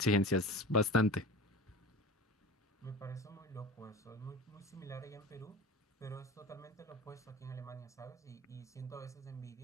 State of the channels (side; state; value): both; normal; correlation 0.35